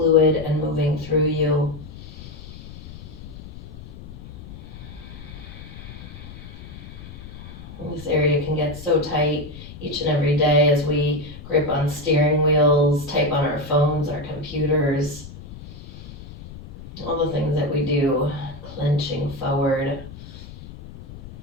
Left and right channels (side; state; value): left; noise; rumble, 15 dB below the sound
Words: and moving through you? This area can get so tight each and every day as we grip on steering wheels, type on our phones, our computers, all the things that we do, clenching forward,